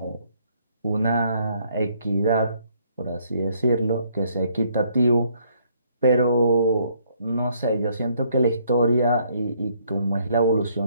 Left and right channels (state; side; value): inverted; both; correlation -0.67